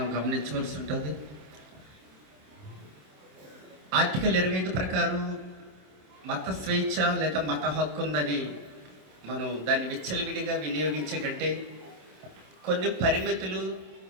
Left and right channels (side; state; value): left; late; 27 ms